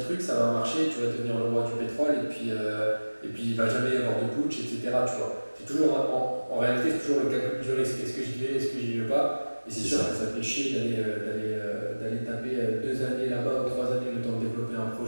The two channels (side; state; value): both; inverted; correlation -1.00